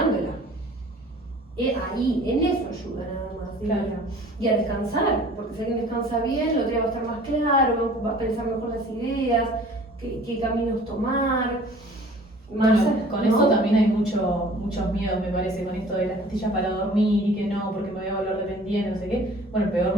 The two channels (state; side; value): normal; both; correlation 0.49